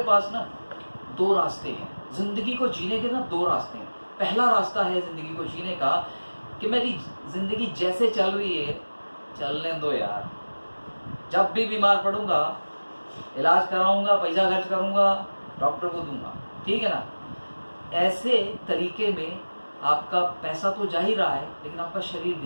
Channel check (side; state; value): both; inverted; correlation -1.00